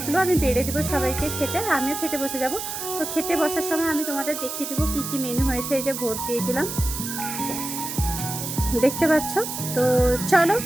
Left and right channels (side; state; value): right; noise; hiss, 6 dB below the sound